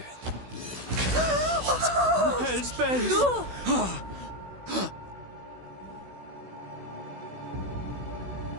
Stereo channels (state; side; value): late; left; 16 ms